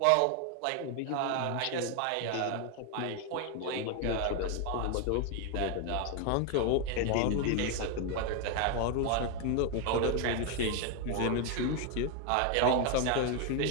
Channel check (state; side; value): different; both; correlation 0.01